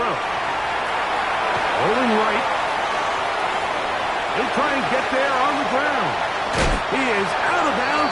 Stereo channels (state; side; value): identical; both; correlation 1.00